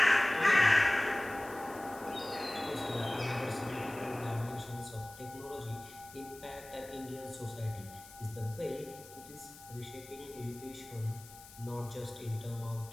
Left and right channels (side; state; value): left; noise; hiss, 19 dB below the sound